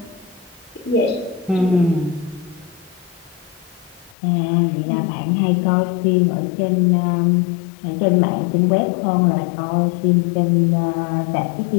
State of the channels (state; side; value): drops out; right; at 4.2 s